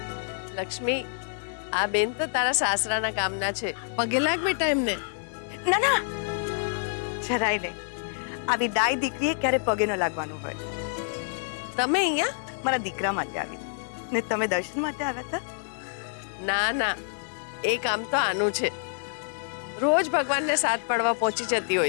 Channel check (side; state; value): right; silent; 60 dB below the other